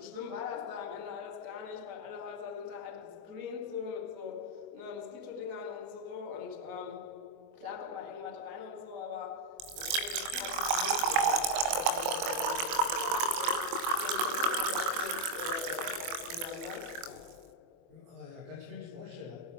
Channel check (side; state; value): left; late; 24 ms